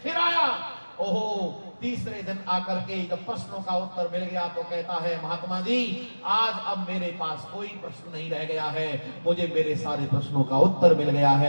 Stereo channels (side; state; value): both; inverted; correlation -1.00